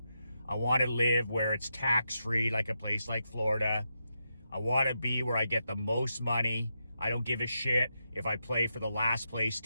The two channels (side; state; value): both; inverted; correlation -0.85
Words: I want to live where it's tax-free, like a place like Florida. I want to be where I get the most money. I don't give a shit if I play for the last place